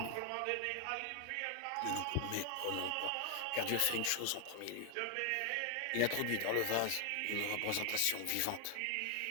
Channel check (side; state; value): both; different; correlation 0.00